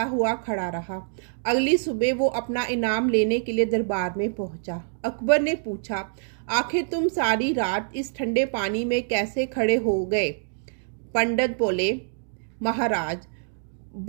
हुआ खड़ा रहा। अगली सुबह वो अपना इनाम लेने के लिए दरबार में पहुंचा। अकबर ने पूछा, आखिर तुम सारी रात इस ठंडे पानी में कैसे खड़े हो गए? पंडित बोले, महाराज,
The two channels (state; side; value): silent; left; digital silence